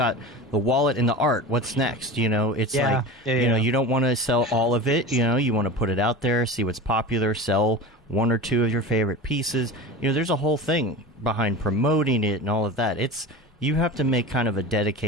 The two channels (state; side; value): normal; both; correlation 0.31